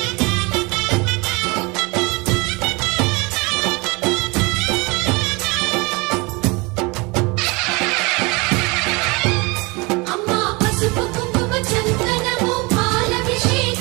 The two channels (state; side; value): quieter; left; 26.7 dB